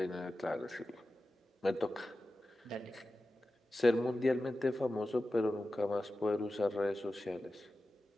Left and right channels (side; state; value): both; normal; correlation 0.94